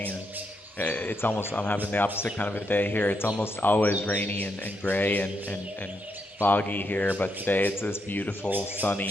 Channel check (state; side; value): normal; both; correlation 0.80